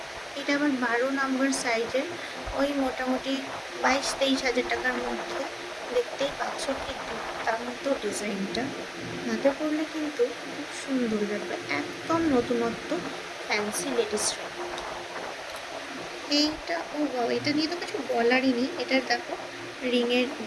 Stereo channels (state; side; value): identical; both; correlation 1.00